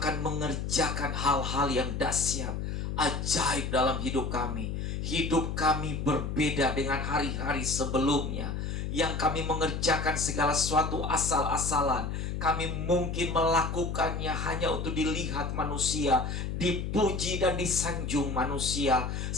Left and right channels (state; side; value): noise; left; hum, 3 dB below the sound